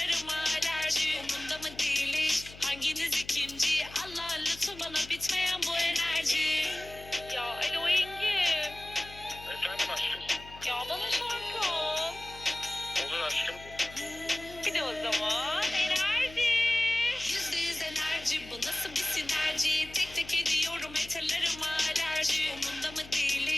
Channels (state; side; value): noise; left; hum, 18 dB below the sound